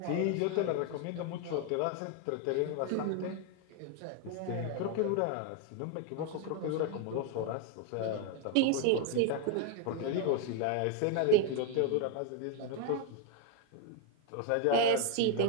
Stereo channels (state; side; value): different; both; correlation 0.01